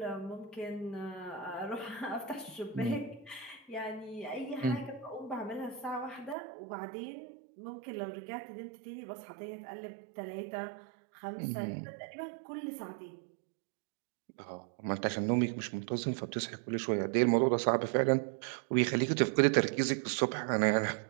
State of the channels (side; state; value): left; drops out; at 6.4 s